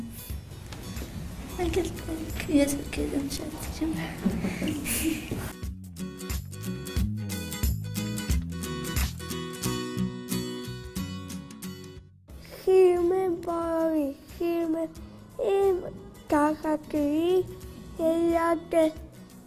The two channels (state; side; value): identical; both; correlation 1.00